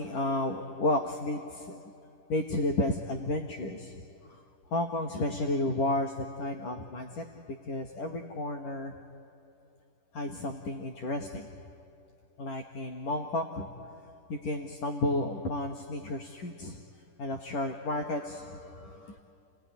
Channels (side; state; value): right; late; 10 ms